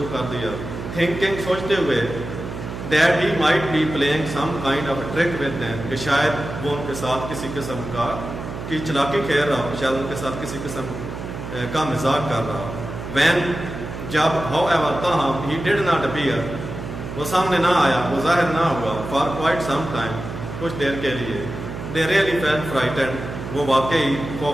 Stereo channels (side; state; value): right; noise; hum, 8 dB below the sound